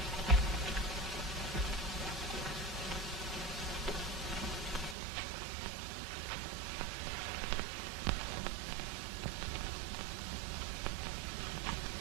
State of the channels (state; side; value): drops out; left; at 5.0 s